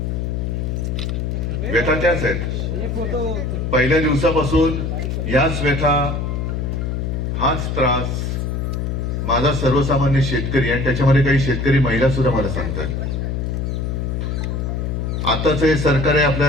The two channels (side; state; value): left; noise; hum, 1 dB below the sound